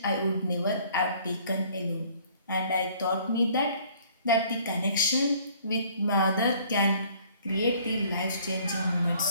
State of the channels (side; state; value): both; inverted; correlation -0.57